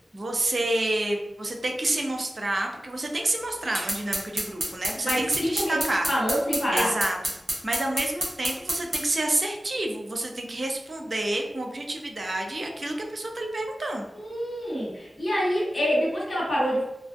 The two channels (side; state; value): both; normal; correlation 0.94